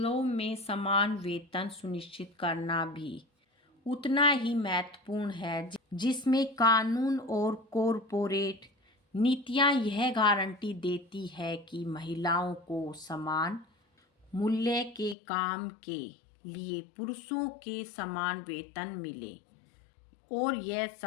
में समान वेतन सुनिश्चित करना भी उतना ही महत्वपूर्ण है, जिसमें कानून और कॉरपोरेट नीतियां यह गारंटी देती है कि महिलाओं को समान मूल्य के काम के लिए पुरुषों के समान वेतन मिले, और यह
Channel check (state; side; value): drops out; right; at 15.2 s